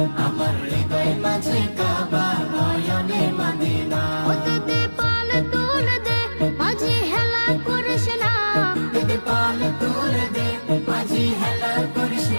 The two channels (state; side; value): inverted; both; correlation -1.00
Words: আমার হৃদয় মাঝে কাবা নয়নে মদিনা। ওতে দে পাল তুলে দে মাঝি হেলা করিস না, দিদি পাল তুলে দে মাঝি হেলা করিস